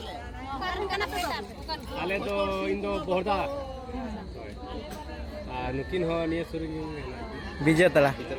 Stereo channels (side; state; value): both; identical; correlation 1.00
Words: आले तो इंदो बोरदा नुकिन हो निया सुरु विजय तला